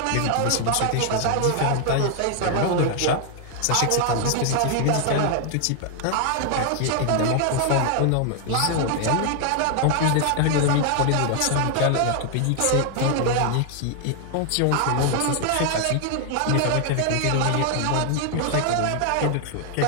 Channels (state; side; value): different; both; correlation 0.00